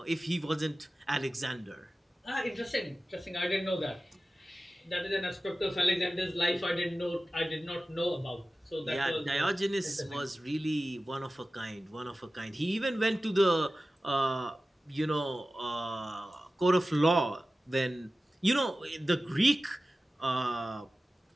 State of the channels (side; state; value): both; normal; correlation 0.95